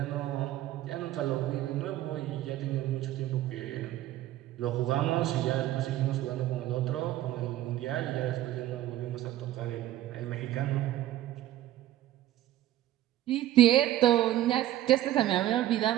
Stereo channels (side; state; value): left; quieter; 13.8 dB